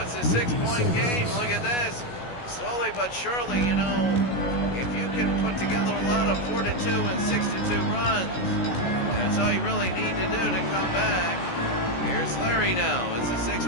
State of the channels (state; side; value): late; right; 17 ms